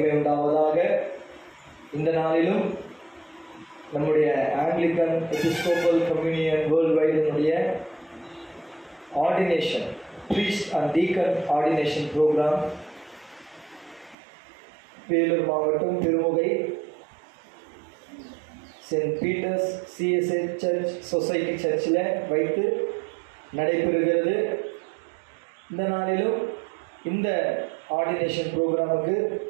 உண்டாவதாக. இந்த நாளிலும் நம்முடைய ஆங்கிலிக்கன் எபிஸ்கோபல் கம்யூனியன் வேர்ல்ட் வைடினுடைய ordination priest and deacon ordination program Vellore மாவட்டம் Tirumugai Saint Peter's CSI church society சர்ச்சில் வைத்து நடைபெறுகிறது. இந்த நாளிலும் இந்த ஆர்டினேஷன் ப்ரோக்ராமுக்கு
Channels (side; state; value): left; drops out; at 14.2 s